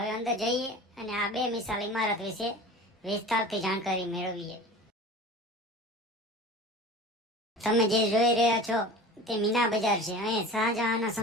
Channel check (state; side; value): normal; both; correlation 0.38